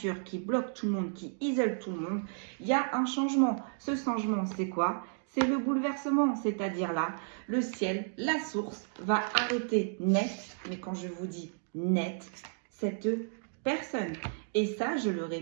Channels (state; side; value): silent; left; digital silence